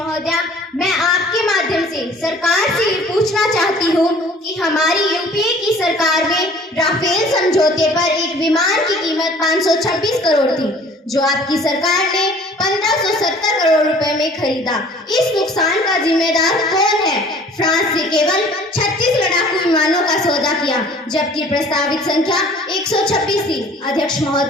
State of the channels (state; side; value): normal; both; correlation 0.51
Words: मैं आपके माध्यम से सरकार से ये पूछना चाहती हूँ कि हमारी यूपीए की सरकार में राफेल समझौते पर एक विमान की कीमत 526 करोड़ थी, जो आपकी सरकार ने 1570 करोड़ रुपए में खरीदा। इस नुकसान का जिम्मेदार कौन है? फ्रांस से केवल 36 लड़ाकू विमानों का सौदा किया, जबकि प्रस्तावित संख्या 126 थी। अध्यक्ष